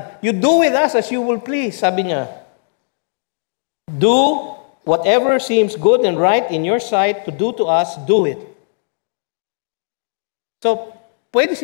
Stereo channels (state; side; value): silent; right; digital silence